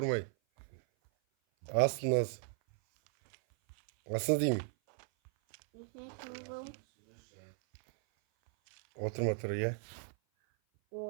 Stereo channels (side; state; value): left; silent; 54 dB below the other